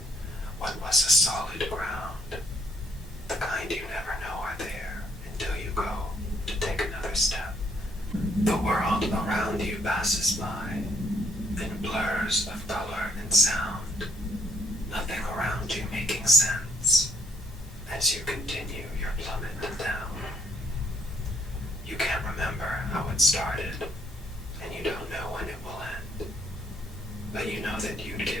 what was a solid ground, the kind you never know are there until you go to take another step. The world around you passes by in blurs of color and sound, nothing around you making sense as you continue your plummet down. You can't remember how it started, and you don't know when it will end, but you know that you'd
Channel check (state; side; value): normal; both; correlation 0.67